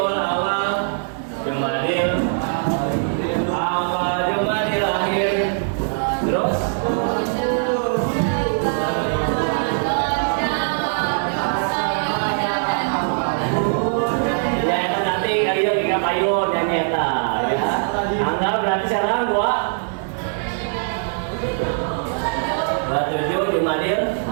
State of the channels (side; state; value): left; silent; digital silence